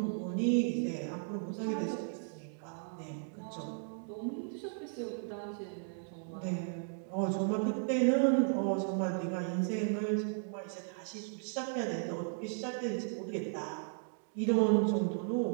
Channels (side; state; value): left; silent; digital silence